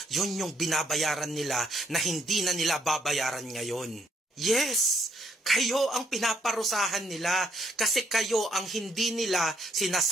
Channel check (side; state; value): both; normal; correlation 0.71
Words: Yun yung binabayaran nila na hindi na nila babayaran ngayon. Yes, kayo ang pinaparusahan nila kasi kayo ang hindi nila